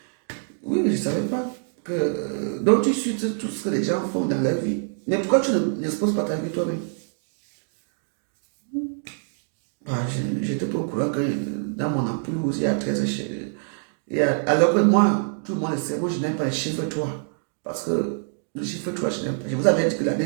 je ne savais pas que... donc, tu suis tout ce que les gens font dans leur vie. Mais pourquoi tu n'exposes pas ta vie toi-même? J'étais pas au courant que dans mon entourage, il y a 13 chiffres. Alors que moi, tout le monde le sait, moi je n'aime pas les chiffres 3. Parce que le chiffre 3, je n'aime pas. Je vous avais dit que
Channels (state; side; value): silent; left; digital silence